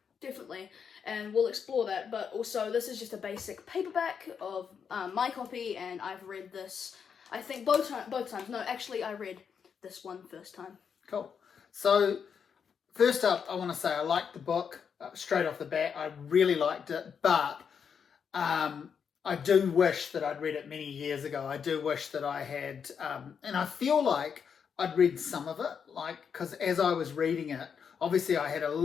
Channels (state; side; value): quieter; right; 6.9 dB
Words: definitely, and we'll explore that. But also, this is just a basic paperback of my copy, and I've read this. I think both times. No, actually, I read this one first time. Cool. So, first up, I want to say I liked the book straight off the bat. I really liked it, but I do wish that I'd read it many years ago. I do wish that I had, and I feel like I'd read some of it, because as I was reading it, obviously I had a